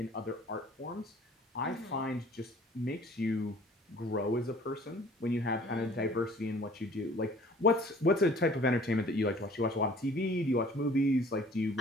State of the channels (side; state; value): both; normal; correlation 0.51